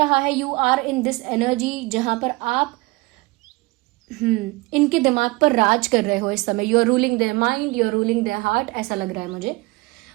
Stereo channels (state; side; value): quieter; left; 23.6 dB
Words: है you are in this energy जहाँ पर आप इनके दिमाग पर राज कर रहे हो इस समय। You are ruling their mind, you are ruling their heart, ऐसा लग रहा है मुझे।